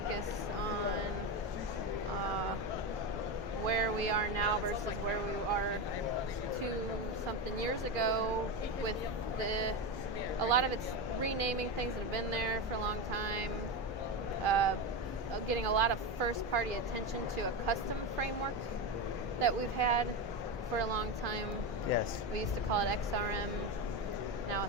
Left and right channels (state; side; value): normal; both; correlation 0.16